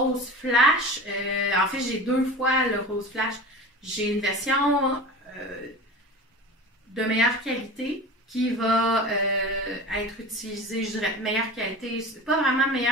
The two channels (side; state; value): both; normal; correlation 0.33